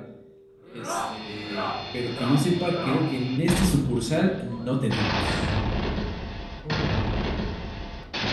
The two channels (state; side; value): identical; both; correlation 1.00